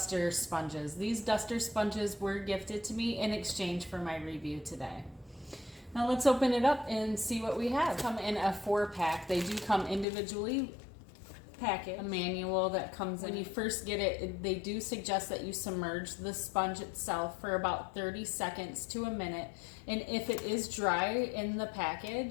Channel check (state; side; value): drops out; right; at 10.1 s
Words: sponges. These duster sponges were gifted to me in exchange for my review today. Now let's open it up and see what we have. Come in a 4-pack. They do come individually packaged. A manual that comes when you first get it. They do suggest that you submerge the sponge itself for about 30 seconds to a minute. And if it is dry in the